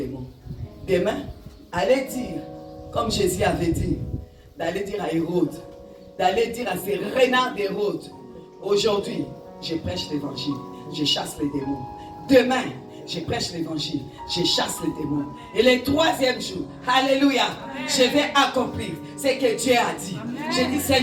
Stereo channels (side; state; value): both; identical; correlation 1.00